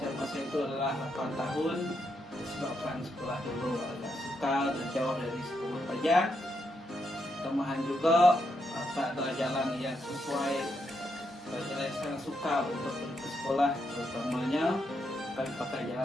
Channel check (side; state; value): both; normal; correlation 0.81